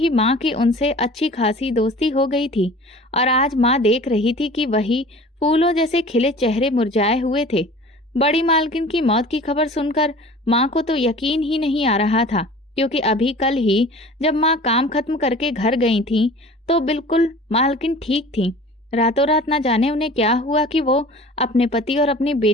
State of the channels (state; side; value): normal; both; correlation 0.42